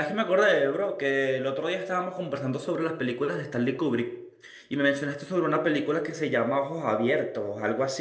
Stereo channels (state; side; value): identical; both; correlation 1.00